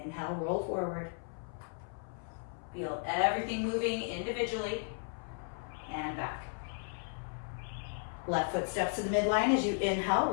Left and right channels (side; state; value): right; silent; 54 dB below the other